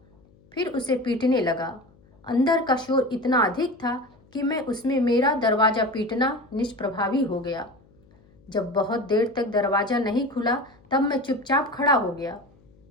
फिर उसे पीटने लगा। अंदर का शोर इतना अधिक था कि मैं उसमें मेरा दरवाजा पीटना निष्प्रभावी हो गया। जब बहुत देर तक दरवाजा नहीं खुला तब मैं चुपचाप खड़ा हो गया।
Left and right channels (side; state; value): left; noise; hum, 29 dB below the sound